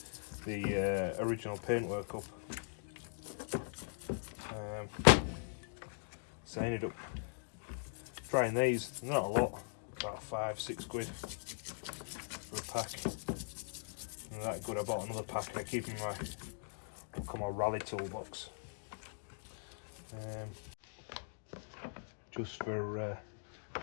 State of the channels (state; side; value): silent; right; digital silence